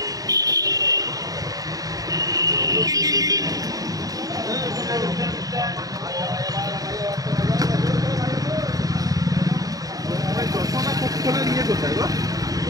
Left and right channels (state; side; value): late; left; 0.18 ms